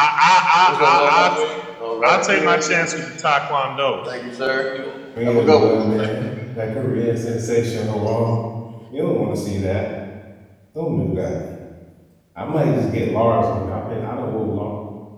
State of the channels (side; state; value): both; identical; correlation 1.00